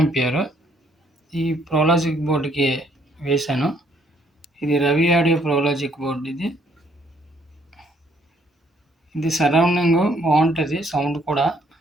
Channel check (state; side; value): normal; both; correlation 0.67